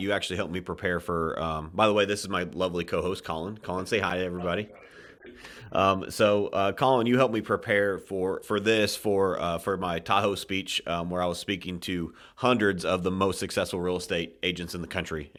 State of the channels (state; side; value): identical; both; correlation 1.00